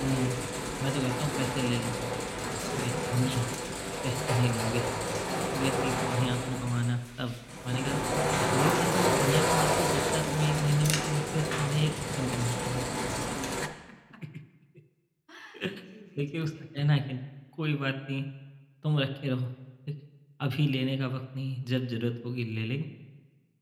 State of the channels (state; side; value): identical; both; correlation 1.00